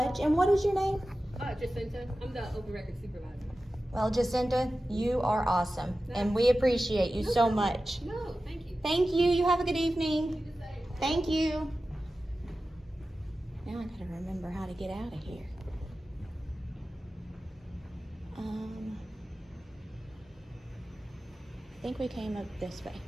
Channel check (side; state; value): both; normal; correlation 0.94